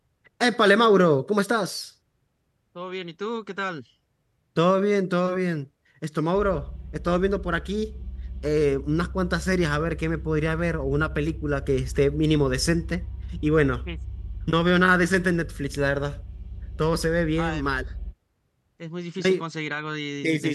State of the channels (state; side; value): identical; both; correlation 1.00